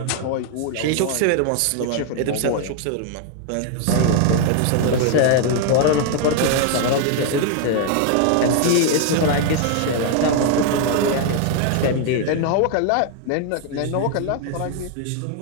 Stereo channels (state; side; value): different; both; correlation 0.00